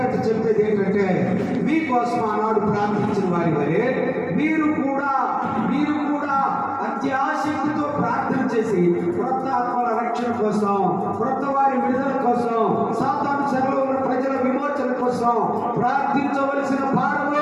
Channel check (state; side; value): identical; both; correlation 1.00